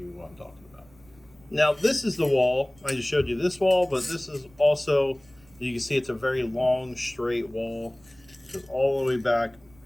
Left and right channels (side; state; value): right; noise; rumble, 28 dB below the sound